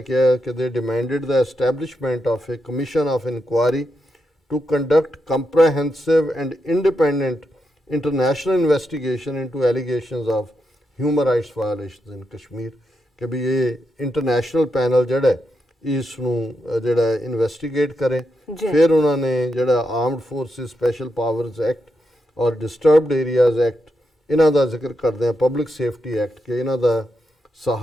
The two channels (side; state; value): both; normal; correlation 0.84